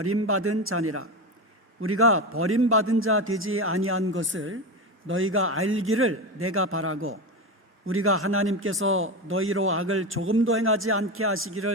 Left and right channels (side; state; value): both; normal; correlation 0.19